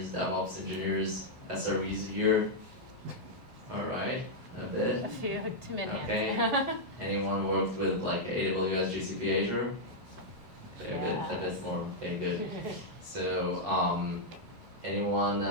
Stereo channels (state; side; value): late; left; 12 ms